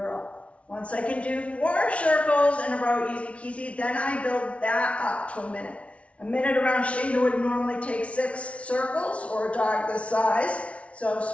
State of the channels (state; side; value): late; right; 0.063 ms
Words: Once I can do 4 circles in a row, easy peasy, then I build that up to a minute. A minute around Shayna would normally take 6 circles, or a dog this size. So